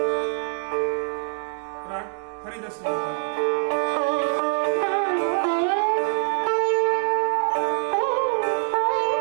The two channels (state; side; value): silent; left; digital silence